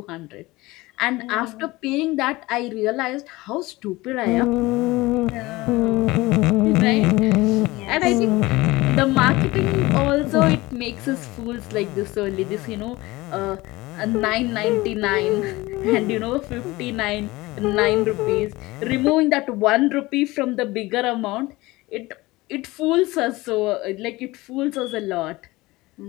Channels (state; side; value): quieter; right; 20.5 dB